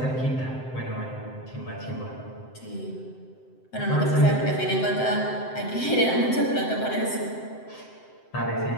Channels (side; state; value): right; late; 7.7 ms